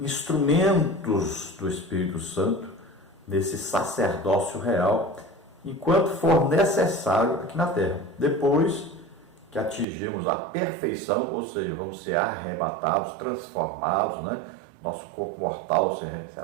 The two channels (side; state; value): left; drops out; at 9.9 s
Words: do Espírito Santo nesse sacerdócio real, enquanto for necessário aqui na terra. Depois que atingimos a perfeição, ou seja, vamos ser arrebatados, transformados, né? Nosso corpo mortal